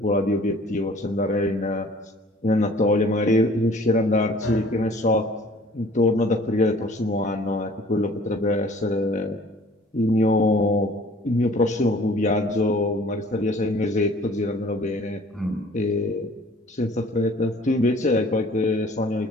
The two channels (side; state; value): both; normal; correlation 0.51